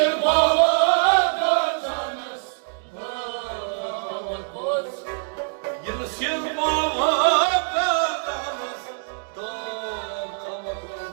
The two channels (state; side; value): silent; left; 61 dB below the other